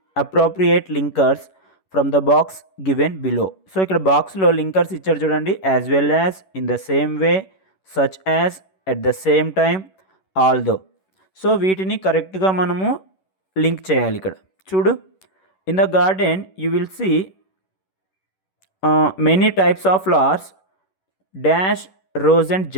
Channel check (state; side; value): late; right; 11 ms